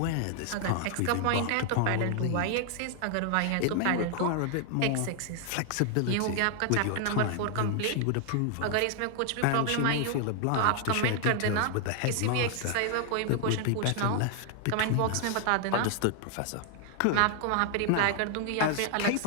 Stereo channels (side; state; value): both; different; correlation 0.00